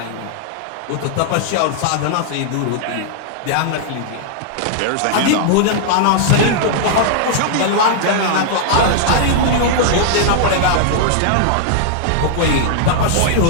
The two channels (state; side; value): different; both; correlation -0.01